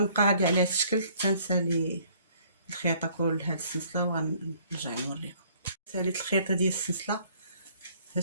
غادي على هاد الشكل تنسالي الخياطه كل هاد السلسله، وغنرجع نوريكم. ساليت الخياطه ديال السلسله هاد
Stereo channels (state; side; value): inverted; both; correlation -0.60